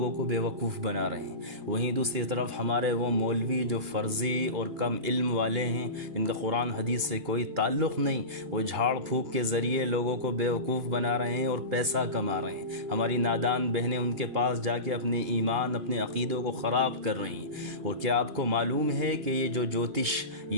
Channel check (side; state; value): left; late; 2.8 ms